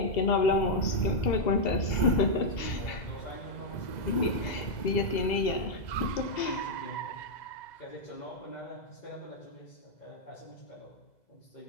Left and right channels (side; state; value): right; late; 2.0 ms